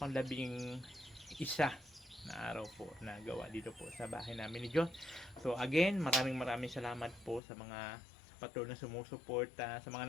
isa na araw po na gawa dito po sa bahay namin ni Diyos. So again, maraming salamat po sa mga patuloy na sumusuporta, sa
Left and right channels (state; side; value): drops out; right; at 7.4 s